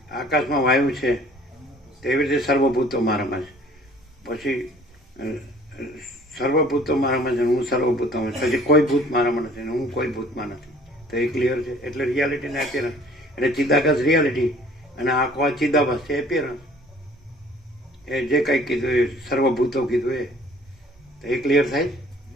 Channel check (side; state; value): both; normal; correlation 0.53